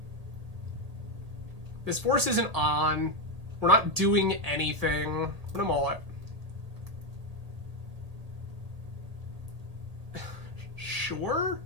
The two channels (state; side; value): late; left; 1.8 ms